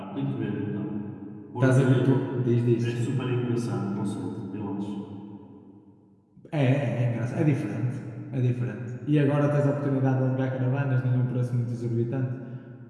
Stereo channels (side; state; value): both; identical; correlation 1.00